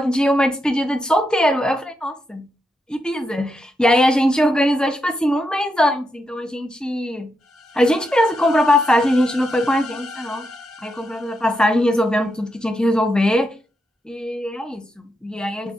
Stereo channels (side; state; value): both; normal; correlation 0.83